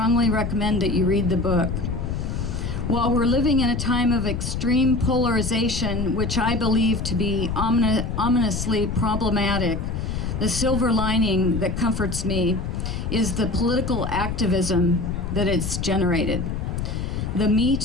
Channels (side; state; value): left; noise; rumble, 3 dB below the sound